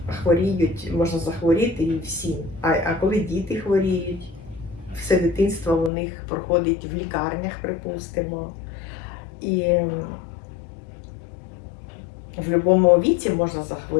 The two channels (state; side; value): drops out; right; at 5.9 s